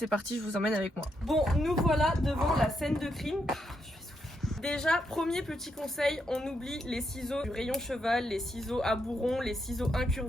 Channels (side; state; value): both; normal; correlation 0.80